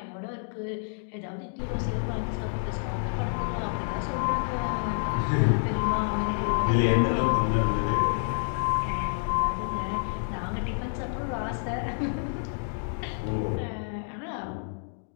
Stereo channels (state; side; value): silent; right; digital silence